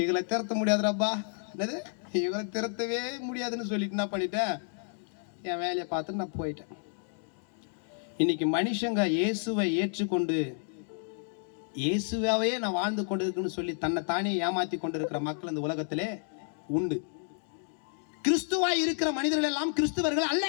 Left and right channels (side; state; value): right; silent; 57 dB below the other